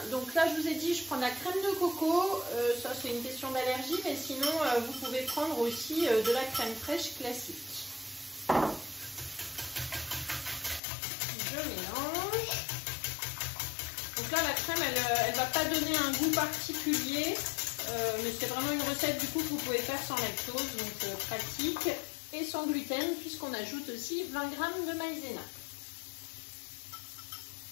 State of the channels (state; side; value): drops out; right; at 10.8 s